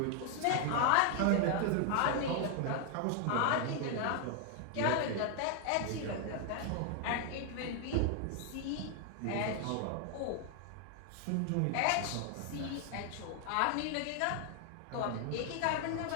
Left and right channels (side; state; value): both; different; correlation 0.00